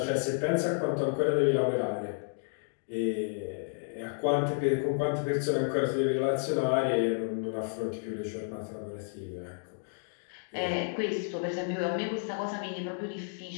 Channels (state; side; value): silent; right; digital silence